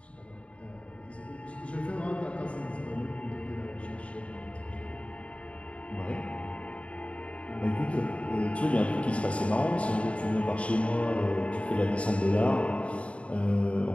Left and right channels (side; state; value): right; late; 0.063 ms